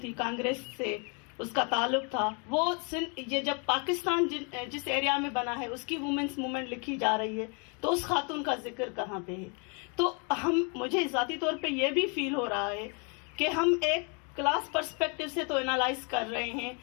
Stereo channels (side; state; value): right; quieter; 35.5 dB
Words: تھی، کانگریس سے اس کا تعلق تھا. وہ یہ جب پاکستان جس ایریا میں بنا ہے اس کی وومنس موومنٹ لکھی جا رہی ہے تو اس خاتون کا ذکر کہاں پہ ہے؟ تو مجھے ذاتی طور پہ یہ بھی فیل ہو رہا ہے کہ ہم ایک کلاس پرسپیکٹو سے تو انالائز کر رہے ہیں